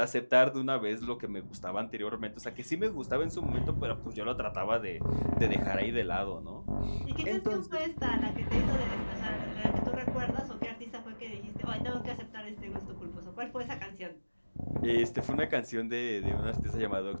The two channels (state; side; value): inverted; both; correlation -1.00